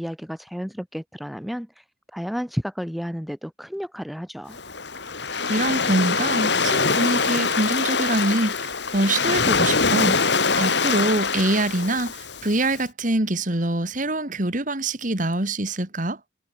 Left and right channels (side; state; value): both; normal; correlation 0.23